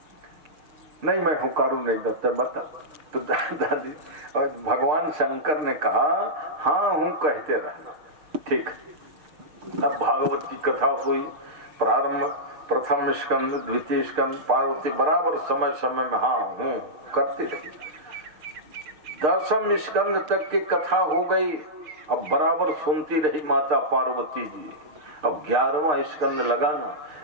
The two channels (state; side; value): late; left; 6.5 ms